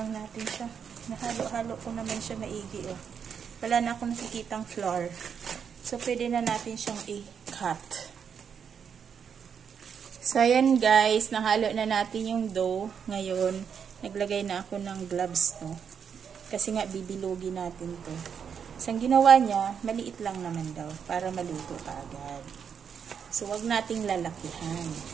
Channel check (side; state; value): left; quieter; 7.2 dB